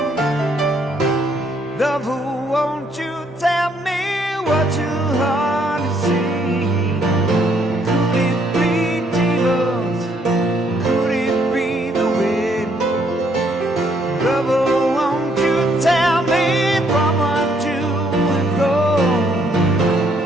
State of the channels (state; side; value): normal; both; correlation 0.69